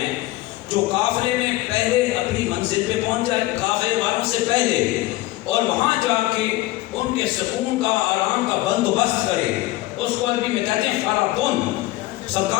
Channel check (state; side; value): quieter; right; 18.1 dB